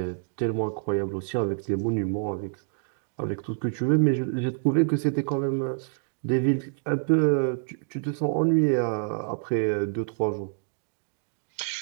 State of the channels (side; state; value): left; silent; digital silence